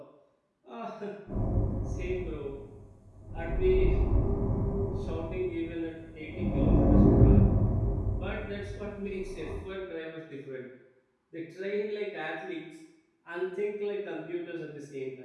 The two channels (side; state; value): both; identical; correlation 1.00